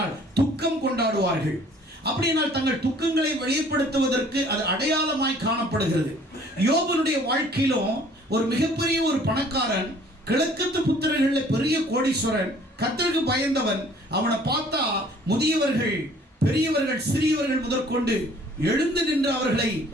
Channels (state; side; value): normal; both; correlation 0.55